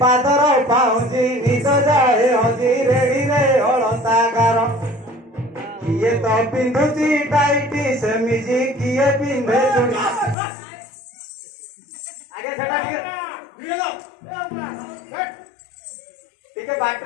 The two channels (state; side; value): drops out; right; at 10.4 s